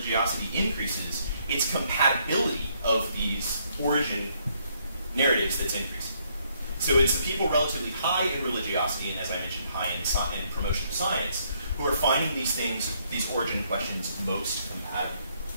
increases, its compatibility of these origin narratives that's increasing. So it's the people relatively high in religiosity, and as I mentioned, high in promotion of science, who are finding these things, these origin questions, most compatible.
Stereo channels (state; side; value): inverted; both; correlation -0.70